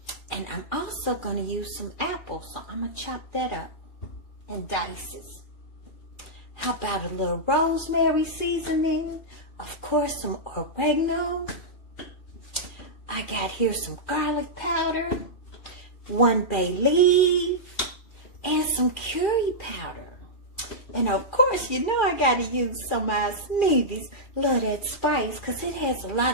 and I'm also gonna use some apples, so I'm gonna chop that up in dices. How about a little rosemary seasoning? Of course, some oregano. I got here some garlic powder, 1 bay leaf, and some curry powder. And of course, you know I gotta use some of my Sneevy Love That Spice because it has a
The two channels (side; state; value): right; late; 2.4 ms